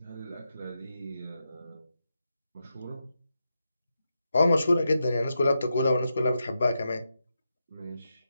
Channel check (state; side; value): inverted; both; correlation -0.87